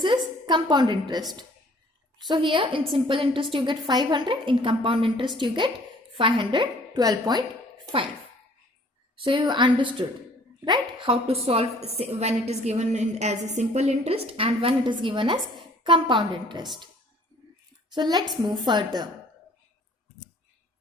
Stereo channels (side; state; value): both; normal; correlation 0.56